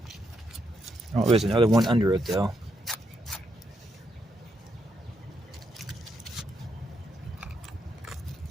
Oh, there's another one under it though.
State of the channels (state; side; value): normal; both; correlation 0.79